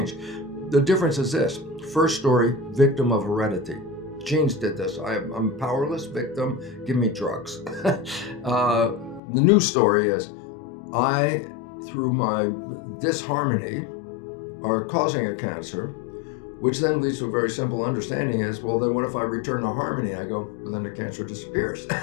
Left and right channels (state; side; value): drops out; right; at 9.2 s